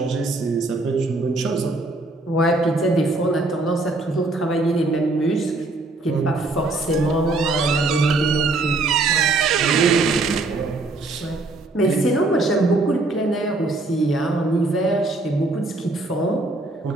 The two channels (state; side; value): quieter; left; 3.1 dB